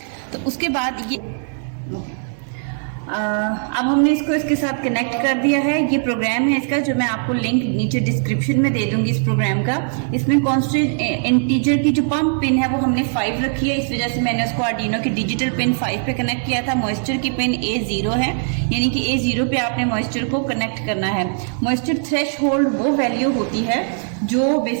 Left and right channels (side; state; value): left; silent; digital silence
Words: तो उसके बाद ये अब हमने इसको इसके साथ कनेक्ट कर दिया है। ये प्रोग्राम है इसका, जो मैं आपको लिंक नीचे डिस्क्रिप्शन में दे दूंगी इस प्रोग्राम का। इसमें कांस्टेंट इंटीजर की जो पंप पिन है वो हमने 5 रखी है, इस वजह से मैंने उसको आर्डिनो की डिजिटल पिन 5 पे कनेक्ट किया था। मॉइस्चर की पिन A0 है, यानी कि A0 पे आपने मॉइस्चर को कनेक्ट करना है। मॉइस्चर थ्रेशहोल्ड वो वैल्यू होती है जो